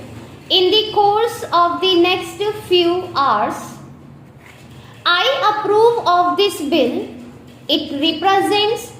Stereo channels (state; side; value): identical; both; correlation 1.00